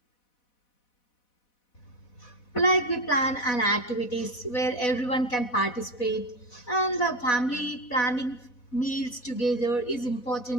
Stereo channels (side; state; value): right; late; 4.1 ms